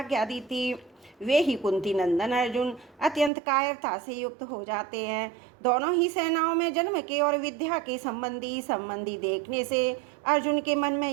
दी थी। वे ही कुंती नंदन अर्जुन अत्यंत कायरता से युक्त हो जाते हैं। दोनों ही सेनाओं में जन्म के और विद्या के संबंधी देखने से अर्जुन के मन में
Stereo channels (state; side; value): drops out; left; at 3.3 s